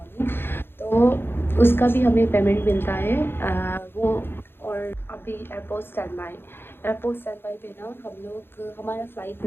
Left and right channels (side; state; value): right; late; 0.11 ms